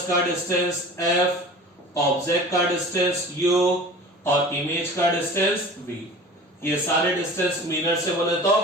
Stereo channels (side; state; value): both; normal; correlation 0.40